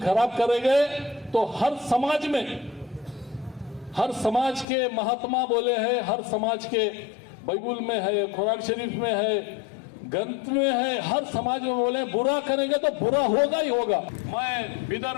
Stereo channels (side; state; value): right; drops out; at 4.7 s